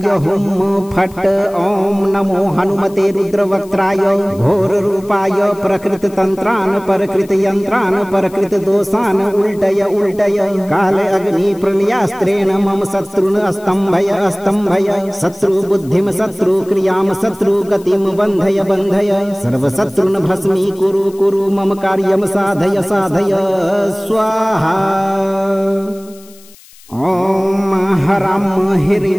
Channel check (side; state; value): left; noise; hiss, 24 dB below the sound